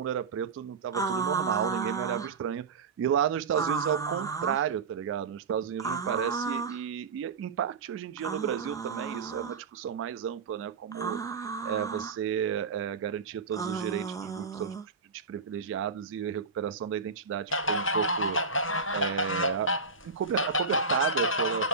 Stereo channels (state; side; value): quieter; left; 4.6 dB